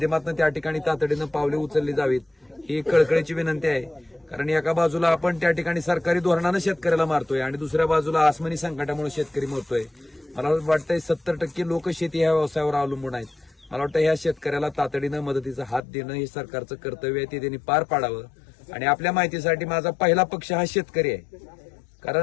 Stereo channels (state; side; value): drops out; right; at 15.8 s